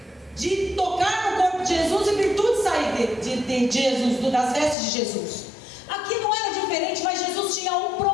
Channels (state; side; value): drops out; right; at 4.8 s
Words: de tocar no corpo de Jesus e virtude sair de Jesus, das vestes de Jesus. Aqui não era diferente, mas Jesus tinha um